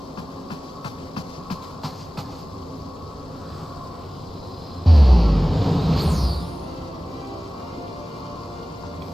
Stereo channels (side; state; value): both; normal; correlation 0.97